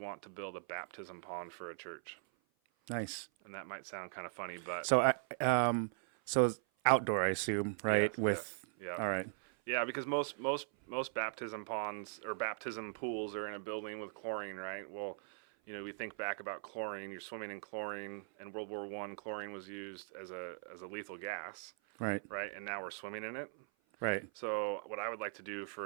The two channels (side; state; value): left; silent; 51 dB below the other